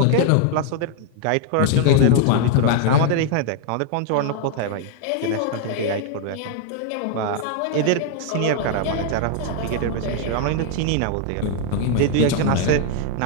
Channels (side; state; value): both; different; correlation 0.00